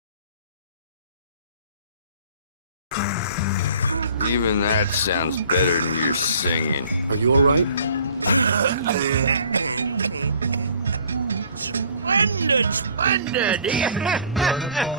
Even that sounds better than your singing. Are you all right? Splendid, splendid!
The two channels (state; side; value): inverted; both; correlation -0.52